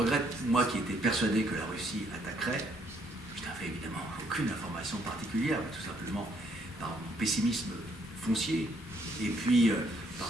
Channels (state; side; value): normal; both; correlation 0.69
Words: moi qui étais persuadé que la Russie attaquerait, je n'avais évidemment aucune information particulière, mais tout simplement par mon pessimisme foncier, et puis par